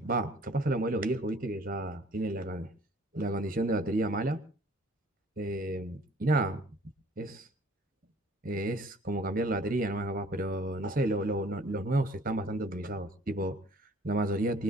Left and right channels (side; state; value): both; normal; correlation 0.54